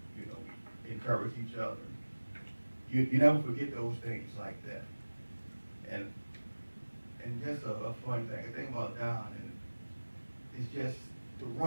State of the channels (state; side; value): inverted; both; correlation -1.00